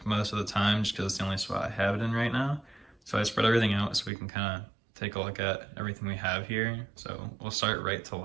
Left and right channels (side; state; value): left; drops out; at 4.1 s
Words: most of the time just because it's the only spot I have it in right now. So I spread everything out so we can kind of take a look at everything we have here. So we'll start right to